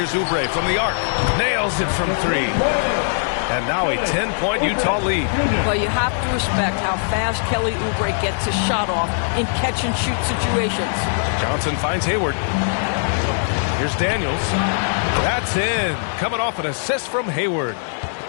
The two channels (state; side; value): silent; right; digital silence